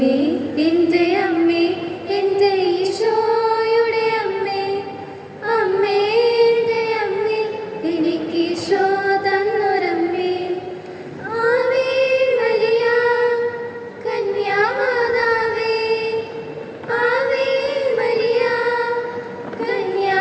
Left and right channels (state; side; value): identical; both; correlation 1.00